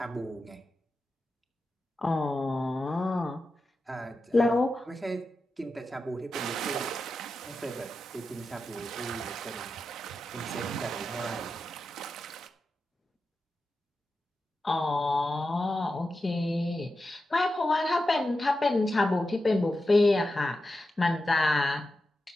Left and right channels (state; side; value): normal; both; correlation 0.91